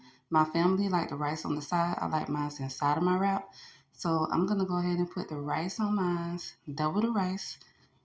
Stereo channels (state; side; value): identical; both; correlation 1.00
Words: My family like the rice on the side. I like mine inside of my wrap. So I'm going to go ahead and put the rice on mine. Double the rice.